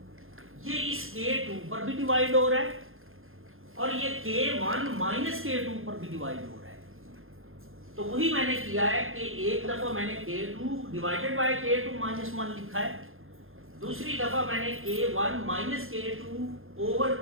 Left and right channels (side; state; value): left; late; 0.60 ms